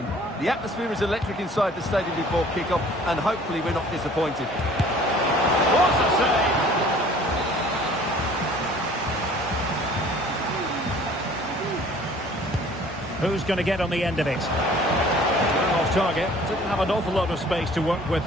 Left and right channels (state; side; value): normal; both; correlation 0.51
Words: The atmosphere is electric inside the stadium before kick-off, and hopefully we're not disappointed. What a save! Who's going to get on the end of it? Off target. Didn't have an awful lot of space to work with,